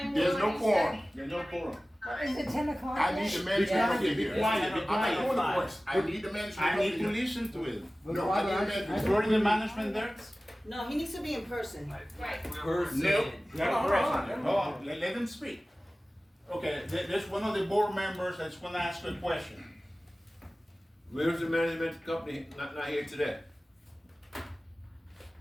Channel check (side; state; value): both; normal; correlation 0.97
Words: There's will no you quorum. There's no quorum. Is it 10 o'clock? I need the management Yeah. company here. Be quiet, be I'm not quiet. doing the voice. I need the management I company need to here. listen to it. No, I need the management. Is already the management there? No, he needs to be in person. Right. Person. No. Hold on, Hold on, let them speak. Okay, there's one of the board members that's gonna ask a question. Where's the management company not here today?